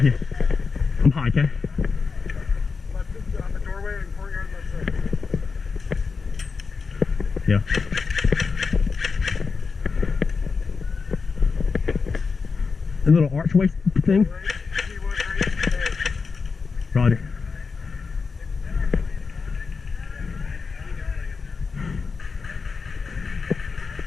you. Yeah. I'm high, okay? On the doorway and courtyard, let's say. Yeah. A little archway thing? Roger.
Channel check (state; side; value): quieter; right; 4.9 dB